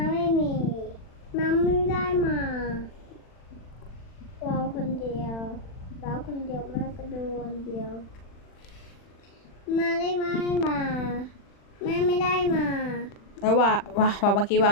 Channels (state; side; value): late; right; 40 ms